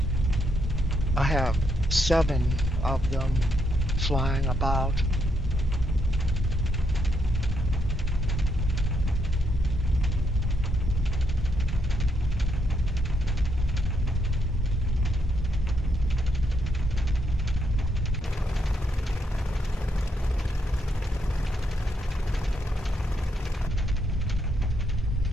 I have 7 of them flying about.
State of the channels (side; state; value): both; normal; correlation 0.77